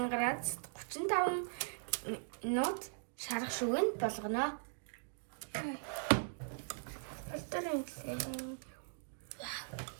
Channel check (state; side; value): silent; left; digital silence